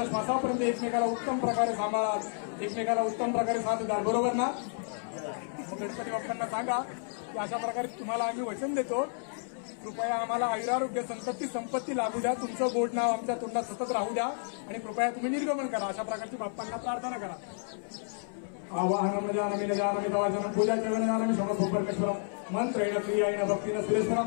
श्वासापर्यंत एकमेकाला उत्तम प्रकारे सांभाळाल एकमेकाला उत्तम प्रकारे साथ द्याल बरोबर ना. गणपती बाप्पांना सांगा की अशा प्रकारे तुम्हाला आम्ही वचन देतो कृपया आम्हाला आयुरारोग्य संपत्ती लाभू द्या तुमचं गोड नाव आमच्या तोंडात सतत राहू द्या आणि कृपया तुम्ही निर्गमन करा अशा प्रकारची बाप्पांना प्रार्थना करा. आवाहनम जानमी न जानमी तवाचनं पूजा चरण जानमी समसोपरकेश्वरम मंत्रेण क्रियायेन भक्तिन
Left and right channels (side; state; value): right; silent; 57 dB below the other